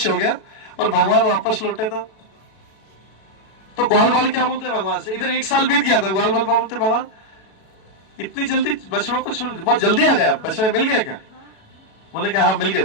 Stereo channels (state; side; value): late; right; 37 ms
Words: हो गया और भगवान वापस लौटे। तो ग्वाल बाल क्या बोलते हैं भगवान से, इधर 1 साल बीत गया था, ग्वाल बाल क्या बोलते हैं, भगवान इतनी जल्दी बछड़ों को छोड़, बहुत जल्दी आ गया, बछड़े मिल गए क्या? बोले कि हाँ मिल गए,